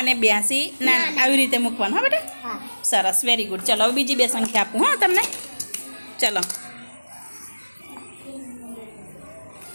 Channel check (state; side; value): inverted; both; correlation -1.00